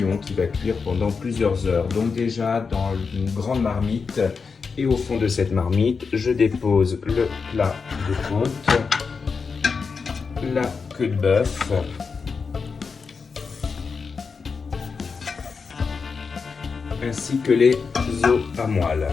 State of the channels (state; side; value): quieter; right; 5.2 dB